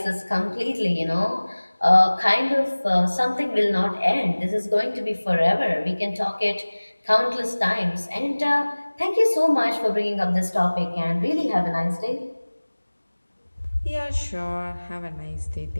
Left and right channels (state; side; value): inverted; both; correlation -1.00